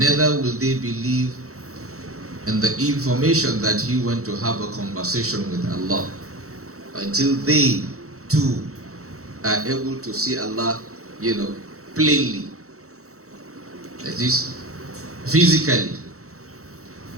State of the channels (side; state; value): left; late; 0.64 ms